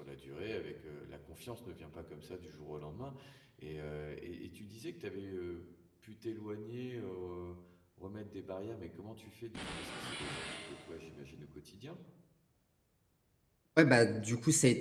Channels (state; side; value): identical; both; correlation 1.00